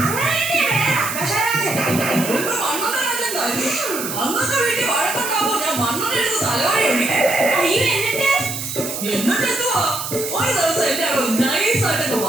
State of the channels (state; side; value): noise; right; hiss, 6 dB below the sound